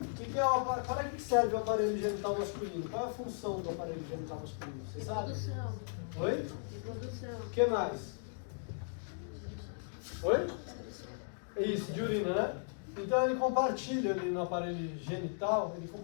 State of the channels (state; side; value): silent; right; digital silence